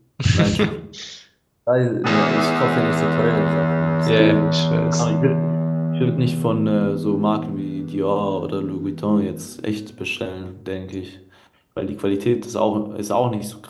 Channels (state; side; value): identical; both; correlation 1.00